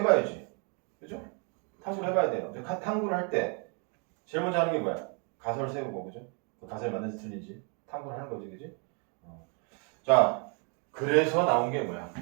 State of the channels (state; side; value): quieter; left; 36.7 dB